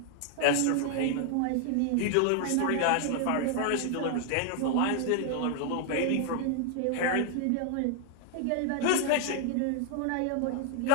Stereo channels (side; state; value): both; different; correlation 0.00